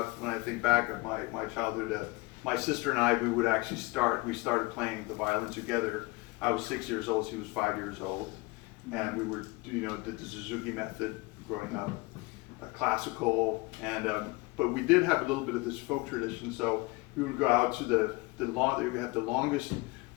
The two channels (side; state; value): right; quieter; 23.5 dB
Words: when I think back of my childhood. My sister and I, we started playing the violin together. I was 6 years old, she was 5 years old, and we were, you know, did the Suzuki method growing up, classical, and but we did have a little bit of this folk tradition. So we would go out to we have the longest